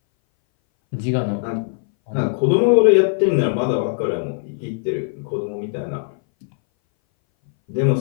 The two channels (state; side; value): silent; right; 61 dB below the other